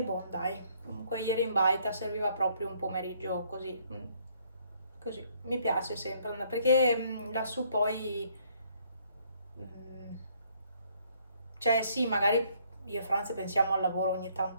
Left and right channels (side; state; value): both; inverted; correlation -0.66